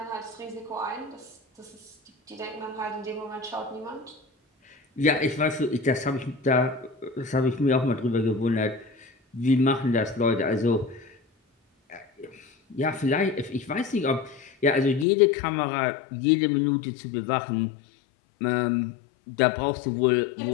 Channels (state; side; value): drops out; right; at 15.1 s